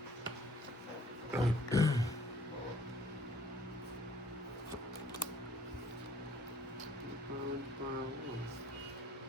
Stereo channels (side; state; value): both; normal; correlation 0.59